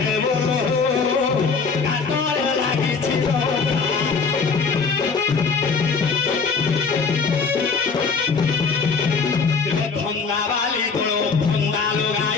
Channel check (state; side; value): quieter; right; 5.0 dB